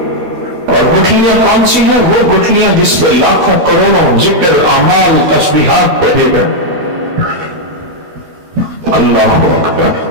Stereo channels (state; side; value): late; left; 12 ms